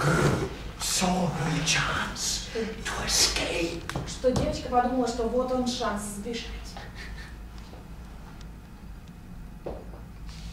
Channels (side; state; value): both; identical; correlation 1.00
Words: saw her chance to escape. что девочка подумала, что вот он шанс сбежать.